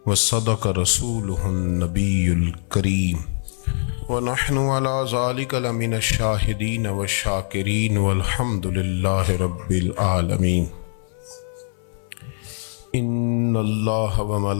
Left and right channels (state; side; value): silent; right; 59 dB below the other